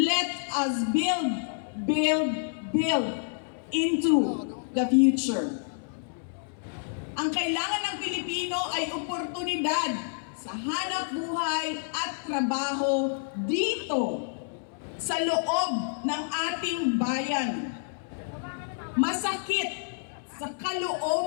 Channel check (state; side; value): silent; right; 59 dB below the other